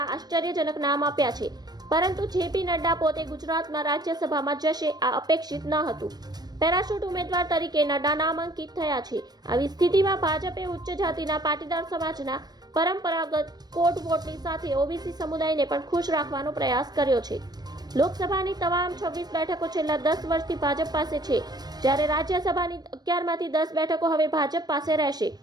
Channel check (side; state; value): left; late; 0.19 ms